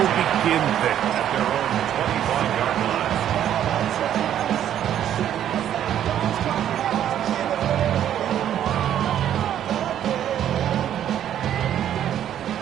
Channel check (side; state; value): left; quieter; 10.6 dB